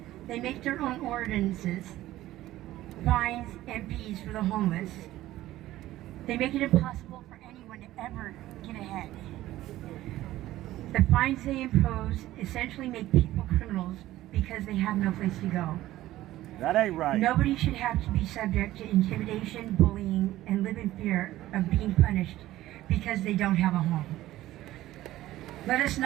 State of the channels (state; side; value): quieter; left; 15.3 dB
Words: They make their own ordinances, fines, and fees for the homeless. They make it impossible for anyone to ever get ahead. The fines they impose essentially make people criminals because they have no place to go. That ain't right. Nobody should have to be subject to intimidation, bullying, and live in fear of being punished because they don't have a home. Let us